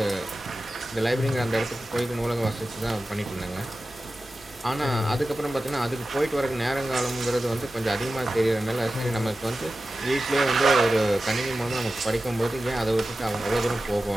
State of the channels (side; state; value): both; normal; correlation 0.94